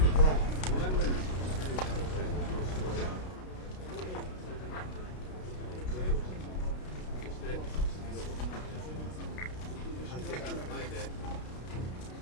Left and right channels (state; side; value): late; right; 32 ms